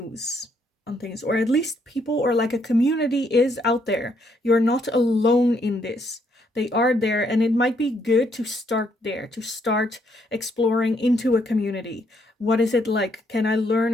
on things, or at least people or like a community is out there. You're not alone in this. They are there, and it might be good to start there, to start exploring into a community. What is it like? Can I learn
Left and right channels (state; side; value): normal; both; correlation 0.72